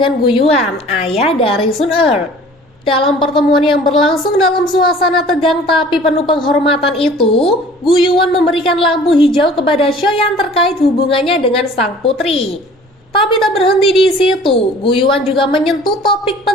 Guyuan, ayah dari Sun Er. Dalam pertemuan yang berlangsung dalam suasana tegang tapi penuh penghormatan itu, Guyuan memberikan lampu hijau kepada Xiaoyan terkait hubungannya dengan sang putri. Tapi tak berhenti di situ, Guyuan juga menyentuh topik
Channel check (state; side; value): normal; both; correlation 0.48